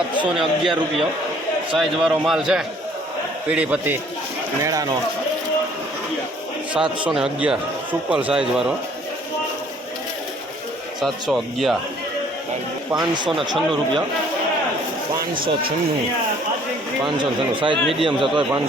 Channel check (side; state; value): both; normal; correlation 0.58